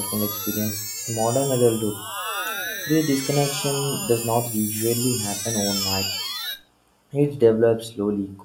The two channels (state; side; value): identical; both; correlation 1.00